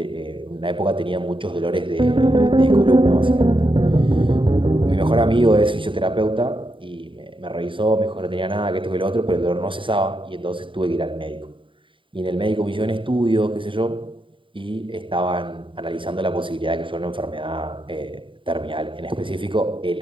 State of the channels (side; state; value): left; late; 0.25 ms